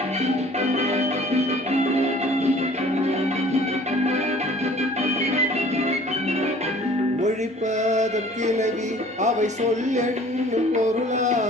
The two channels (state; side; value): normal; both; correlation 0.50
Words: மொழிப்பதம் கிளவி அவை சொல் என்னும்